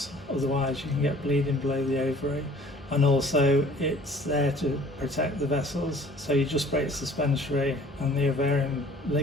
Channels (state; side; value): normal; both; correlation 0.52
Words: otherwise you can get bleeding below the ovary. And also it's there to protect the vessels, so you just break the suspensory and the ovarian